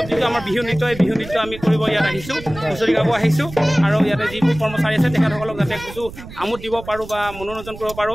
যিটো আমাৰ বিহু নৃত্য, এই বিহু নৃত্য আমি কৰিব ইয়াত আহিছোঁ, হুঁচৰি গাব আহিছোঁ। আৰু ইয়াতে যিবোৰ কৰ্মচাৰী আছে তেখেতসকলক যাতে কিছু আমোদ দিব পাৰোঁ বা মনোৰঞ্জন কৰিব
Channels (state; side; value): noise; right; rumble, 14 dB below the sound